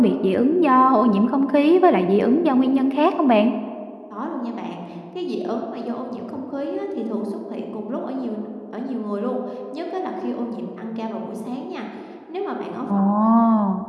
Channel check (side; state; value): both; identical; correlation 1.00